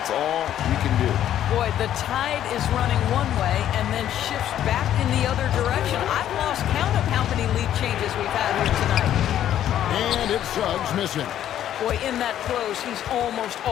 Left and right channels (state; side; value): quieter; right; 11.2 dB